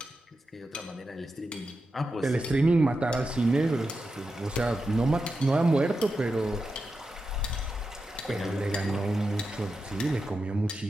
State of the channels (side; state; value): both; normal; correlation 0.89